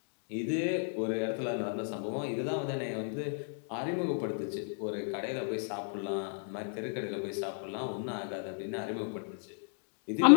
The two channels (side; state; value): right; silent; 56 dB below the other